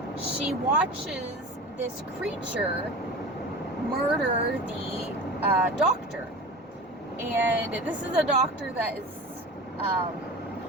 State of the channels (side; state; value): both; normal; correlation 0.33